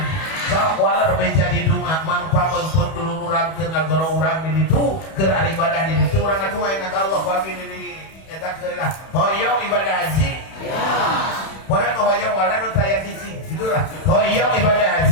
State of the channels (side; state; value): right; late; 31 ms